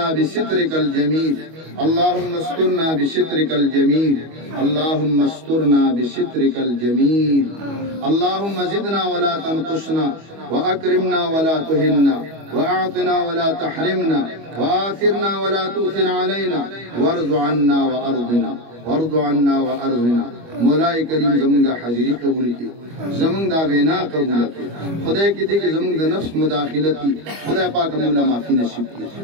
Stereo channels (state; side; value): late; left; 25 ms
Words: بسترك الجميل اللهم استرنا بسترك الجميل اللهم استرنا بسترك الجميل اللهم زدنا ولا تنقصنا وأكرمنا ولا تهنا وأعطنا ولا تحرمنا وآثرنا ولا تؤثر علينا وارض عنا وأرضنا وارض عنا وأرضنا مولاي کریم زمون دا حاضری قبول کی زمون دا وینا قبول کی خدای کی دی کہ زمون دا نفس مداخلتی خدای پاک مولا معافی نصیب کی